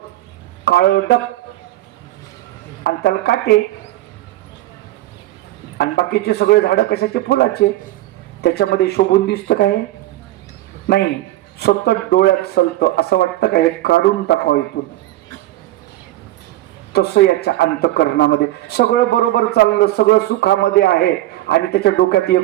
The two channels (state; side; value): quieter; left; 15.6 dB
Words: काळडक आणि त्याला काटे. आणि बाकीचे सगळे झाडं कशाचे? फुलाचे. त्याच्यामध्ये शोभून दिसतं काय? नाही. सतत डोळ्यात सलतं, असं वाटतं का हे काढून टाकावं इथून. तसं याच्या अंतःकरणामध्ये सगळं बरोबर चाललं, सगळं सुखामध्ये आहे, आणि त्याच्या डोक्यात